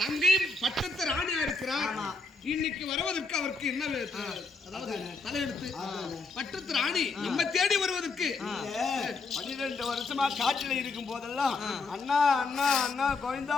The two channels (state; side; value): quieter; right; 3.9 dB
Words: தங்கை பட்டத்து ராணியா இருக்கிறார். இன்னைக்கு வருவதற்கு அவருக்கு என்ன அதாவது தலையெடுத்து பட்டத்து ராணி நம்ம தேடி வருவதற்கு 12 வருஷமா காட்டில இருக்கும் போதெல்லாம் அண்ணா அண்ணா அண்ணா கோவிந்தா